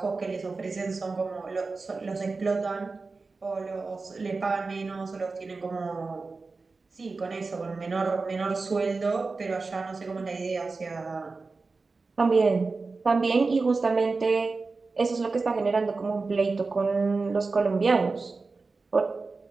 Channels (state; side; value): quieter; left; 4.0 dB